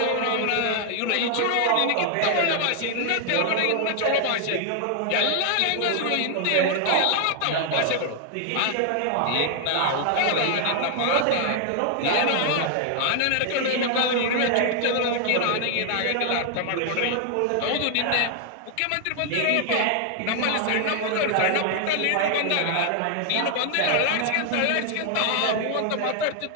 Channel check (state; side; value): different; both; correlation 0.00